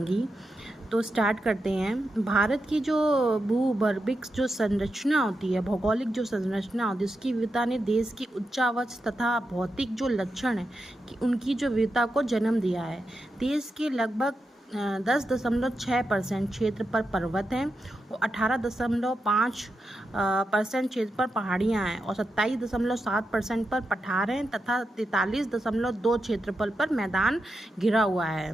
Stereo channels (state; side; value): normal; both; correlation 0.88